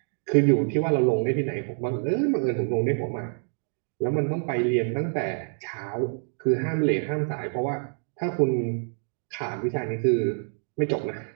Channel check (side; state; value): left; silent; 60 dB below the other